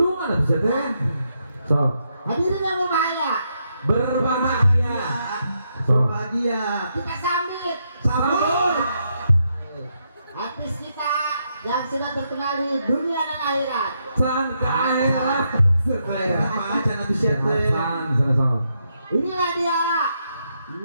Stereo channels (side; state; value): both; inverted; correlation -0.80